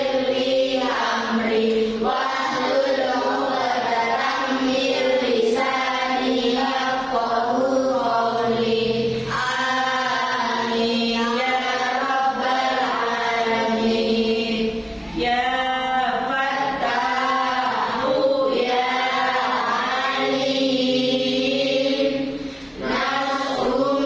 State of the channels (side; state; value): both; identical; correlation 1.00